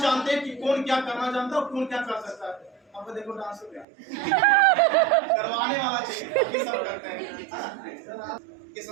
जानते हैं कि कौन क्या करना जानता है और कौन क्या कर सकता है। अब देखो डांस हो गया करवाने वाला चाहिए, सब करते हैं इस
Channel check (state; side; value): drops out; left; at 3.9 s